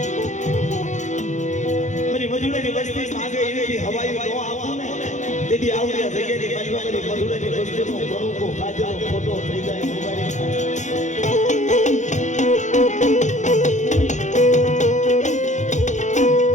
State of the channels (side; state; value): right; late; 0.35 ms